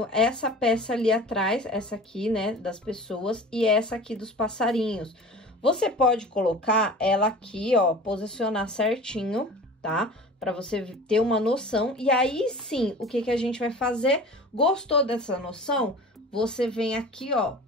essa peça ali atrás, essa aqui, né, das pessoas, e essa aqui dos passarinhos. Você pode colocar ela aqui, ó, posicionar certinho, tá? Para você ter uma noção. E aí, sim, o que que a gente vai fazer? Gostou dessa noção? Você vem aqui, ó,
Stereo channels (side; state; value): both; normal; correlation 0.39